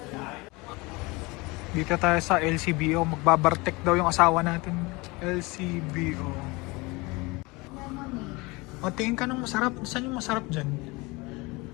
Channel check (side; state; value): right; quieter; 24.6 dB